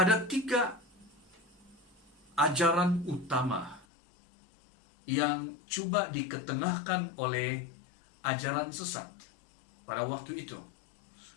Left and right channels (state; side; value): drops out; right; at 3.9 s